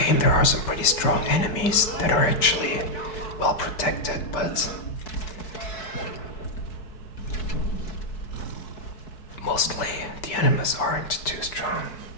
there are some pretty strong enemies that are actually well protected, but mostly the enemies aren't too strong.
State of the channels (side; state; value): right; late; 4.6 ms